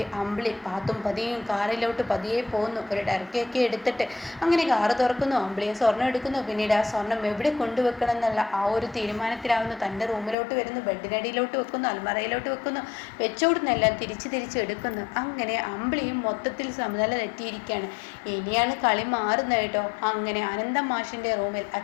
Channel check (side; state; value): right; drops out; at 10.4 s